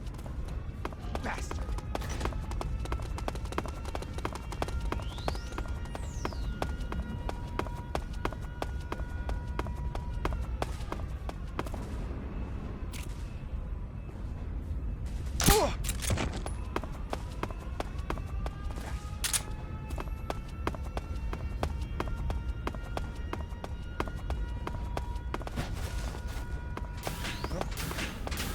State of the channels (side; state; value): both; identical; correlation 1.00